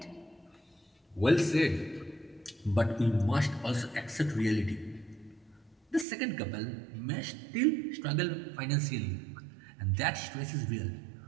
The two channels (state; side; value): drops out; left; at 6.1 s